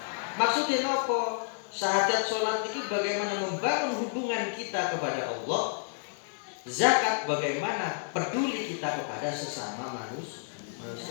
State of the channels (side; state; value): right; silent; 55 dB below the other